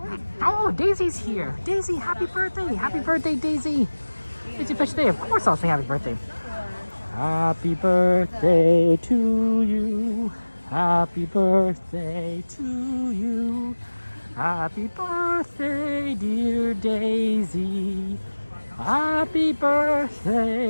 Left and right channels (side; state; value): both; inverted; correlation -1.00